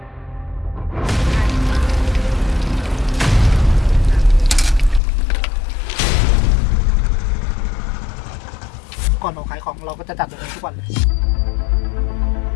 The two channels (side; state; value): right; drops out; at 5.0 s